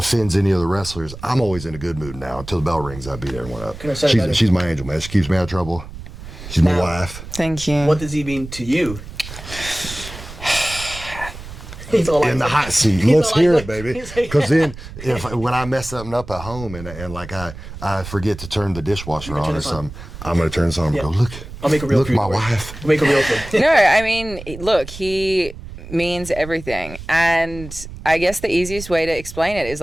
any of the wrestlers. I'm always in a good mood now. Until the bell rings, I beat everyone up. Can I say that? She's my angel, man. She keeps me out of trouble. She's my Now- wife. Thank you. What does he mean to you? He's all like, In the hot seat. He's Let's all hear like- it, baby. he's like- Because then, when I mess something up at home and like I forget to turn the dishwasher turn on or this on. something, I'm gonna turn this on and go, look. I'll make a real Look, food my for you. wife. I'll make a real food. No, I mean, look, he means everything. And I guess the easiest way to explain it is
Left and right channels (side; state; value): right; noise; rumble, 13 dB below the sound